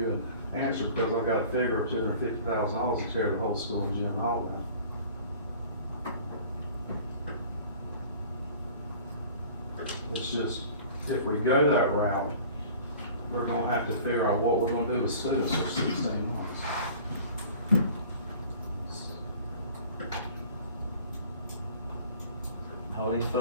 an answer because I've got a figure of $250,000 to tear the whole school and gym hall down. It's just, if we go that route, we're gonna have to figure out what we're gonna do with students for 16 months. All these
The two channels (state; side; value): inverted; both; correlation -0.46